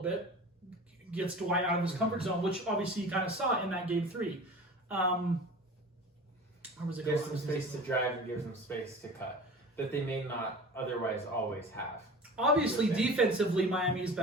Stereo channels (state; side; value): normal; both; correlation 0.38